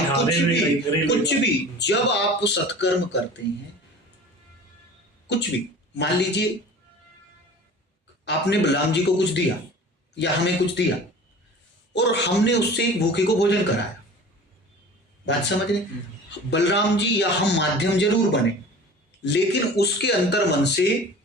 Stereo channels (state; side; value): normal; both; correlation 0.41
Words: कुछ भी जब आप सत्कर्म करते हैं, कुछ भी, मान लीजिए आपने बलराम जी को कुछ दिया या हमें कुछ दिया और हमने उससे एक भूखे को भोजन कराया, बात समझ रहे, बलराम जी या हम माध्यम जरूर बने, लेकिन उसके अंतर मन से